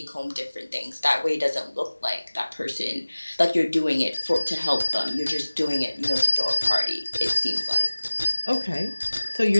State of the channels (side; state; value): both; inverted; correlation -1.00